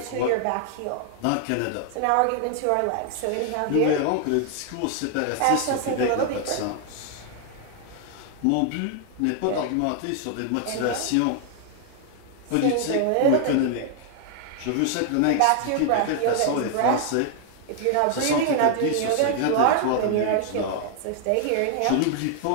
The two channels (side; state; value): both; different; correlation 0.00